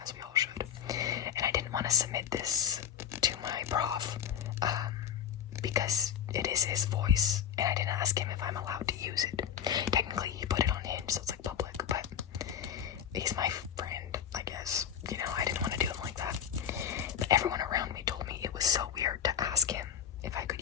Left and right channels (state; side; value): quieter; right; 8.9 dB